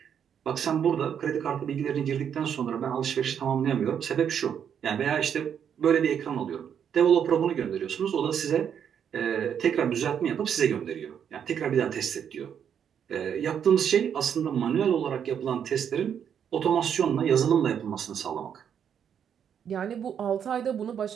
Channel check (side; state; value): left; quieter; 8.3 dB